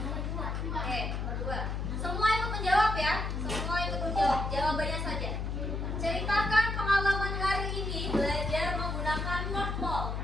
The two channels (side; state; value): left; noise; hum, 2 dB below the sound